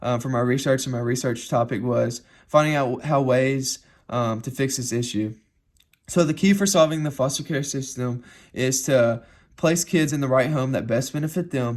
for my research and my research topic was finding out how ways to fix this issue. So the key for solving the foster care system is to place kids in the right home that best benefit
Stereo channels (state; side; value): identical; both; correlation 1.00